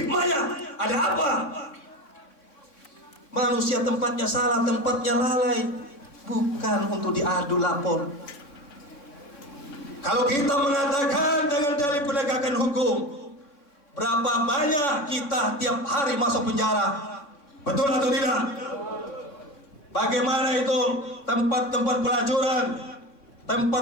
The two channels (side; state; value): right; late; 3.6 ms